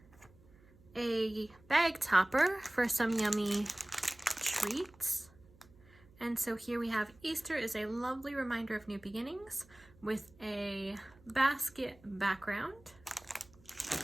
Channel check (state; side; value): noise; right; hum, 26 dB below the sound